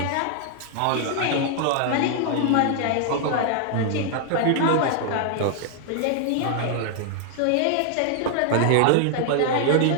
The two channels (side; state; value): both; different; correlation 0.00